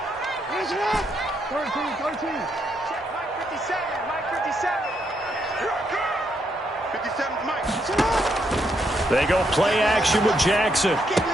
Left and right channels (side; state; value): both; normal; correlation 0.77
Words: They go play action with Jackson.